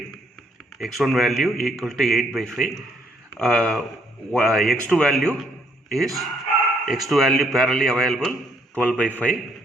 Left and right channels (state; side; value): normal; both; correlation 0.69